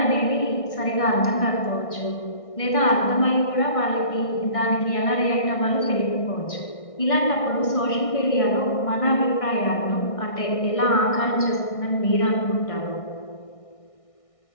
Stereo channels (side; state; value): right; late; 1.6 ms